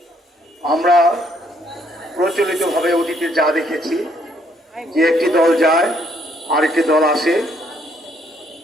আমরা প্রচলিতভাবে অতীতে যা দেখেছি যে একটি দল যায় আরেকটি দল আসে,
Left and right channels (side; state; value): both; normal; correlation 0.69